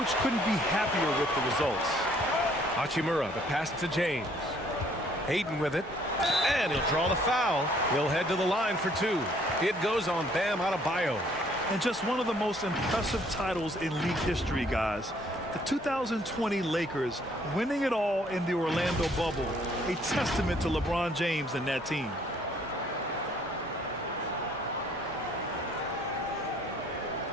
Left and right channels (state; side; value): normal; both; correlation 0.62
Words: couldn't be happier with the results. Hachimura, the pass to James. Ayton with it. And he'll draw the foul. He'll head to the line for 2. It goes on Bam Adebayo. And just one of the most impressive titles in league history, guys. The 2020 Lakers winning it all in the Orlando bubble. A testament to LeBron James and that team.